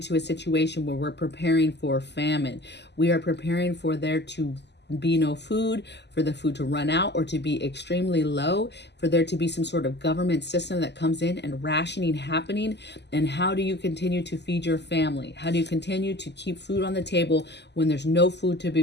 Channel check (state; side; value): late; right; 0.50 ms